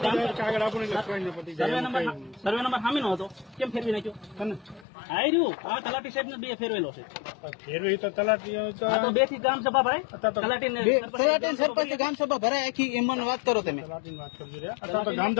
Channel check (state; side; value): drops out; right; at 4.9 s